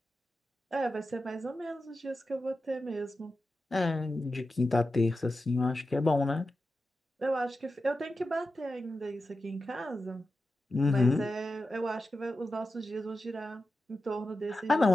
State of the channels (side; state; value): both; normal; correlation 0.91